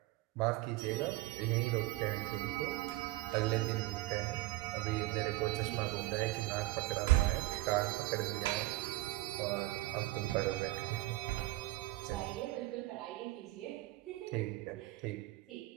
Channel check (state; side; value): quieter; left; 18.4 dB